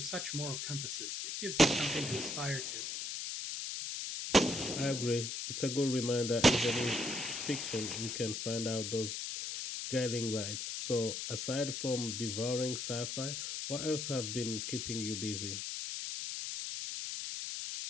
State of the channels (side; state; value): left; noise; hiss, 4 dB below the sound